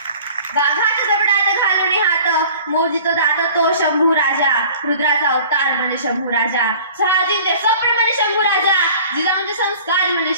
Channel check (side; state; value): both; inverted; correlation -0.47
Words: वाघात जबडात घालून हात, मोजितो दात तो शंभू राजा, रुद्राचा अवतार म्हणजे शंभू राजा, शहाजींचे स्वप्न म्हणजे शंभू राजा, जिजाऊंचे संस्कार म्हणजे